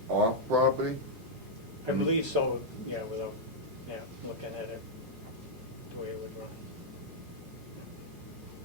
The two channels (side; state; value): left; noise; hum, 25 dB below the sound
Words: off property? I believe so, yeah, without, looking at it, the way it would run.